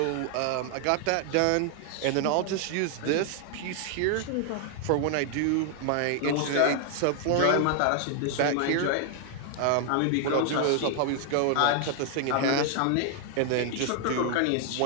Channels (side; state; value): both; different; correlation 0.00